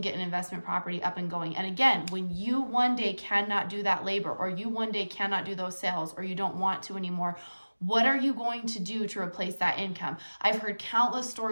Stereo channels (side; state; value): both; inverted; correlation -1.00